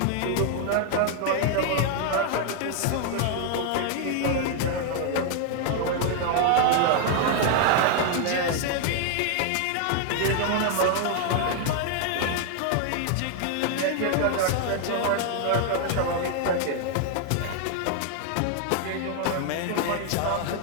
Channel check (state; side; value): different; both; correlation 0.00